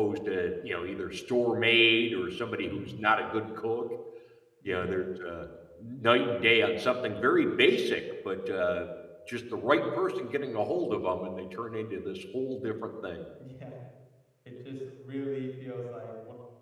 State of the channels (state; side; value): identical; both; correlation 1.00